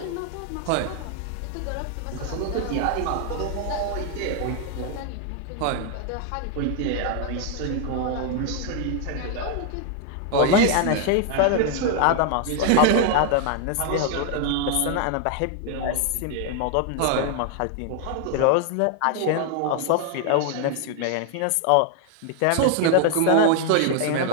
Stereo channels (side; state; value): both; different; correlation 0.00